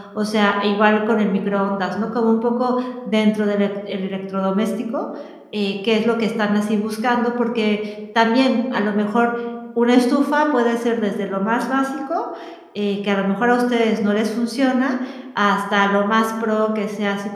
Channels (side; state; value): both; identical; correlation 1.00